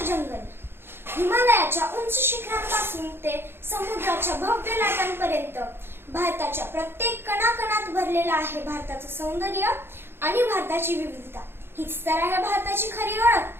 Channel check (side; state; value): left; late; 0.11 ms